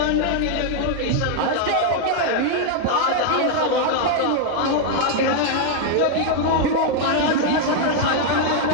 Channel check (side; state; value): both; different; correlation 0.00